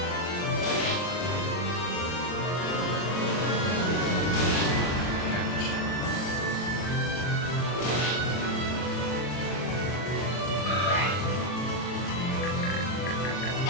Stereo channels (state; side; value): late; right; 40 ms